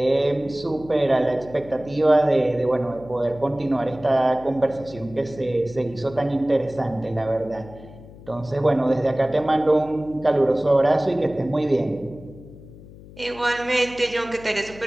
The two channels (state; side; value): noise; left; hum, 19 dB below the sound